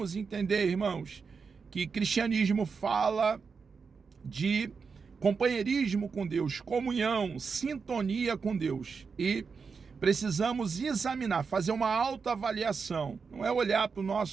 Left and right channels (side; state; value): left; quieter; 5.3 dB